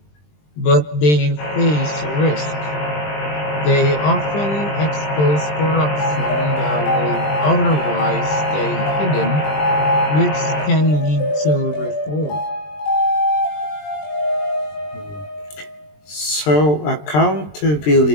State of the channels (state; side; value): late; right; 20 ms